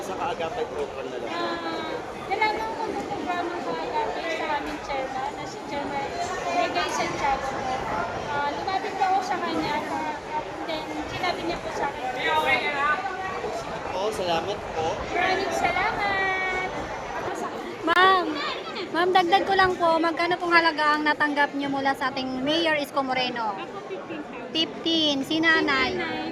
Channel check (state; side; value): identical; both; correlation 1.00